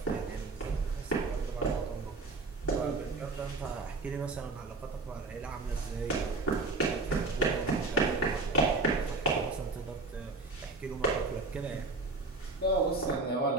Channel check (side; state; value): left; quieter; 3.6 dB